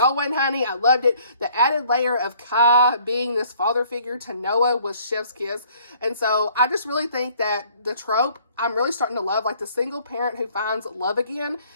honey. I loved it. The added layer of Kai being this father figure to Noah was chef's kiss. And so I just really think that the trope, I'm really starting to love, the single parent who finds love again.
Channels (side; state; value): both; inverted; correlation -0.59